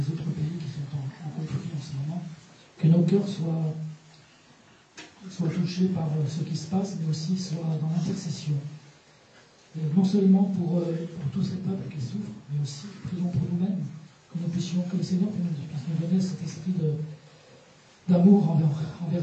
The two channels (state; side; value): identical; both; correlation 1.00